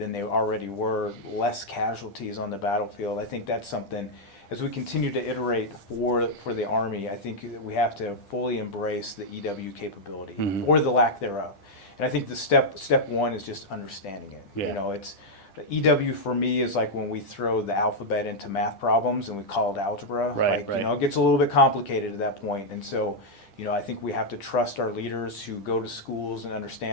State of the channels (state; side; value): late; right; 10 ms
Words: they already were, less casualties on the battlefield? I think that's something. As we continue to iterate for the Army, I think that we have to fully embrace the EW capability or the lack thereof. And I think the step one is just understanding it. Yeah. It's EW for me is like when we throw the alphabet into math problems and we call it algebra. Right. It gets a little bit complicated at that point. And so, I think we have to trust our leaders who go to schools and